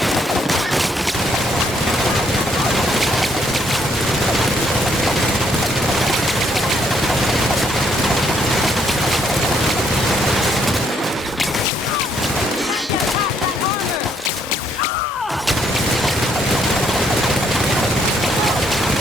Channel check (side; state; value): both; normal; correlation 0.70